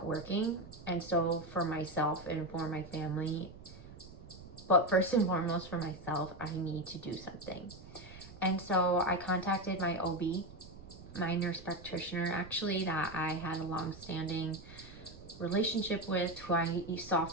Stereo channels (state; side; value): noise; right; rumble, 17 dB below the sound